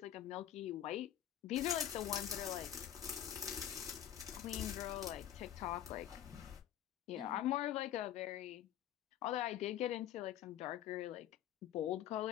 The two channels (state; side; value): quieter; right; 11.2 dB